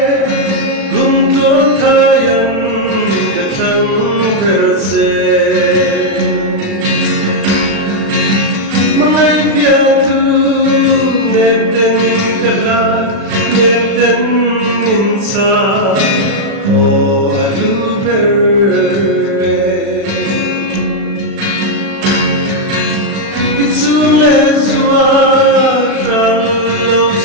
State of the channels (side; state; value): left; late; 36 ms